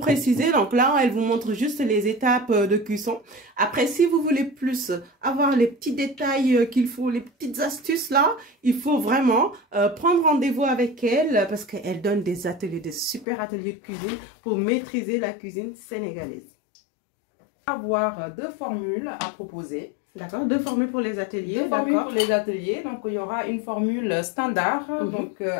donc là, elle vous montre juste les étapes de cuisson. Après, si vous voulez plus avoir les petits détails qu'il faut, les petites astuces là, il faut vraiment prendre rendez-vous avec elle parce qu'elle donne des ateliers, des super ateliers de cuisine pour maîtriser la cuisine sénégalaise. Avoir 2 formules à proposer. D'accord, 2 formules pour les ateliers. 2 formules pour les ateliers. Donc, il y aura une formule standard, donc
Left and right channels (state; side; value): drops out; right; at 13.2 s